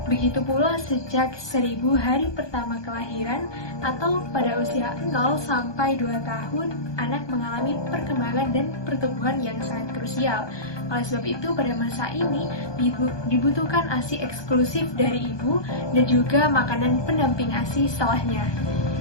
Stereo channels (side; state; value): right; late; 1.2 ms